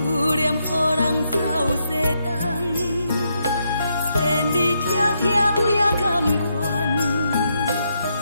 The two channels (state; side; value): inverted; both; correlation -0.79